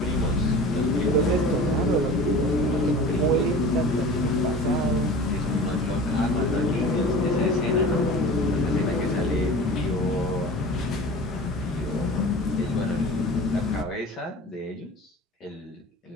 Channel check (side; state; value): both; normal; correlation 0.38